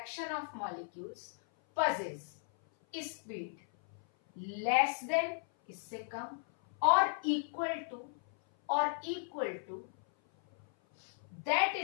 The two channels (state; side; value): silent; right; 54 dB below the other